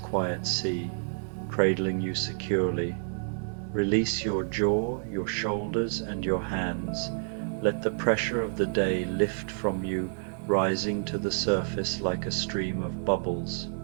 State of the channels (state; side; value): silent; left; 59 dB below the other